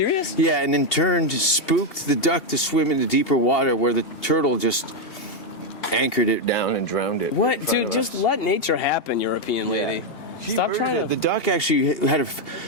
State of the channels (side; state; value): right; late; 2.8 ms